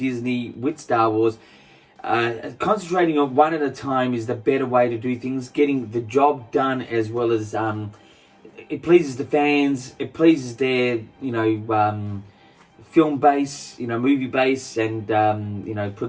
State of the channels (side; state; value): both; identical; correlation 1.00